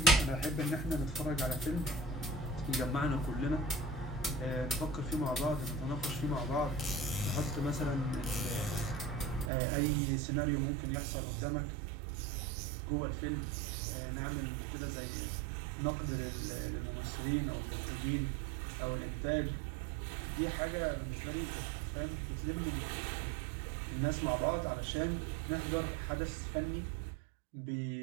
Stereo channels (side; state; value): left; drops out; at 9.5 s